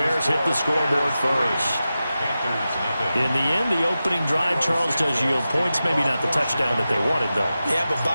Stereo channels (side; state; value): both; inverted; correlation -0.93